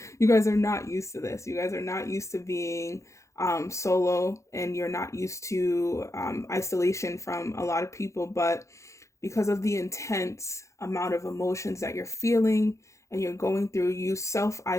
you guys are not used to this. You guys are not used to being solo, and you're not used to isolation from a lot of people. But because of the intense amount of emotions that you're feeling and you're going through, you self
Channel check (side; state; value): right; late; 0.15 ms